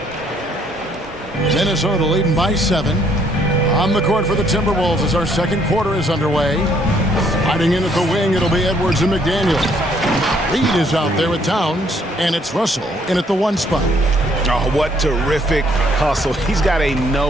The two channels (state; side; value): normal; both; correlation 0.66